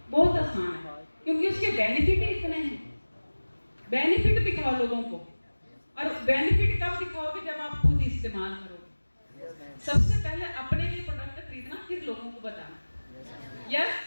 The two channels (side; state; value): both; inverted; correlation -1.00